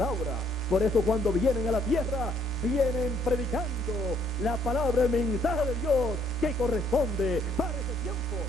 Por eso cuando vienen a la tierra, vienen predicando la palabra, el mensaje de Dios que corresponde para ese tiempo,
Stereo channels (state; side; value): normal; both; correlation 0.67